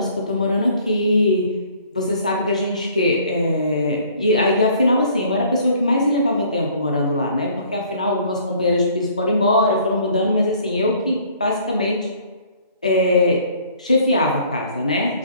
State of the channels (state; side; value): inverted; both; correlation -0.57